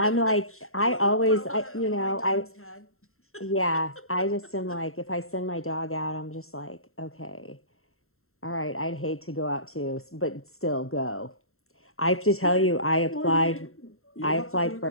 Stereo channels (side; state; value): right; late; 0.62 ms